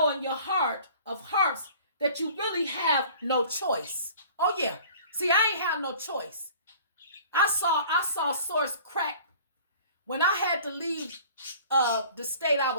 in your heart of hearts that you really have no choice. Oh yeah. See, I ain't have no choice. I saw Source crack when I had to leave the state I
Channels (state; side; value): inverted; both; correlation -0.47